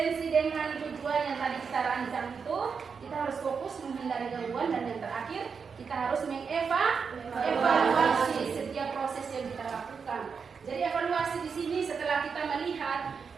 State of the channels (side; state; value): left; quieter; 5.8 dB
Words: dengan tujuan yang tadi kita rancang itu, kita harus fokus menghindari gangguan, dan yang terakhir kita harus mengevaluasi setiap proses yang kita lakukan. Jadi evaluasi di sini setelah kita melihat